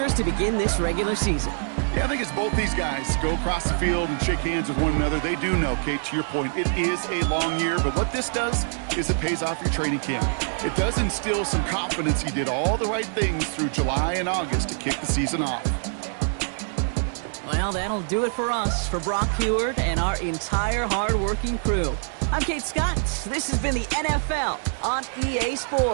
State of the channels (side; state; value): left; silent; digital silence